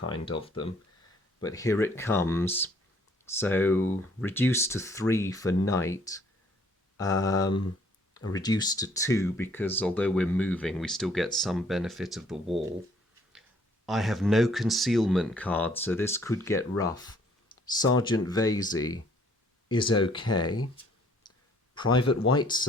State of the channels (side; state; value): both; normal; correlation 0.61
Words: of them. But here it comes. So reduced to 3 for night, reduced to 2 because although we're moving, we still get some benefit of the wall. I have no concealment card, so this could get rough. Sergeant Vasey is okay. Private